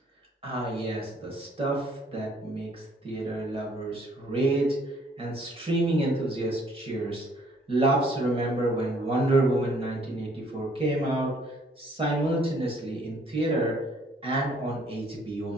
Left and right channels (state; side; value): normal; both; correlation 0.62